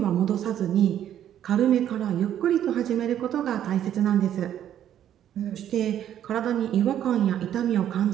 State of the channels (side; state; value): left; quieter; 10.7 dB